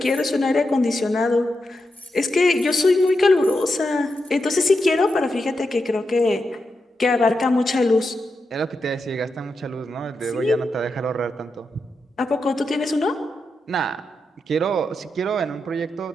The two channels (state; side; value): normal; both; correlation 0.87